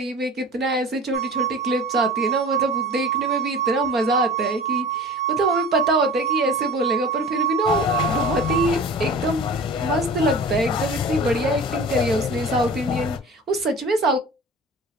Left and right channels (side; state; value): both; normal; correlation 0.38